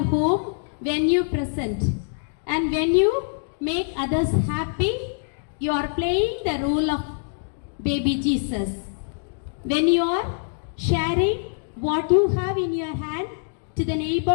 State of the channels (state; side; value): silent; right; digital silence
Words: home when you present. And when you make others happy, you are playing the role of baby Jesus. When you are sharing what you have in your hand to the